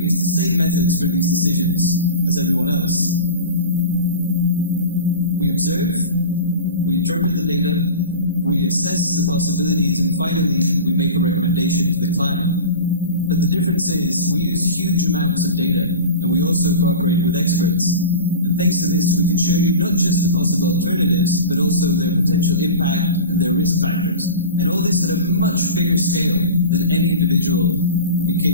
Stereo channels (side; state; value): both; inverted; correlation -0.33